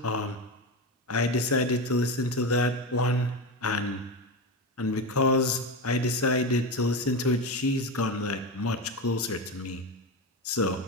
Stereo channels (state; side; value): normal; both; correlation 0.18